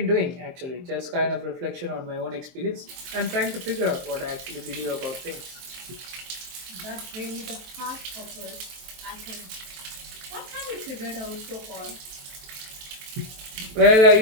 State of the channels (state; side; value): late; left; 23 ms